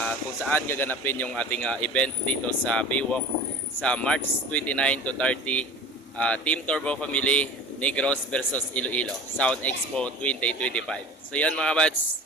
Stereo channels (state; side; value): normal; both; correlation 0.38